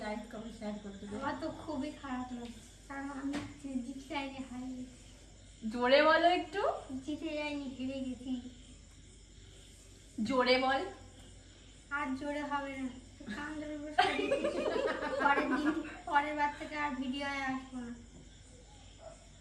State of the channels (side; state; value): both; identical; correlation 1.00